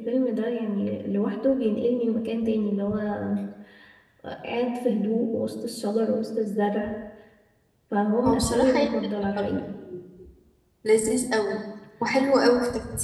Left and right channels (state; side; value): identical; both; correlation 1.00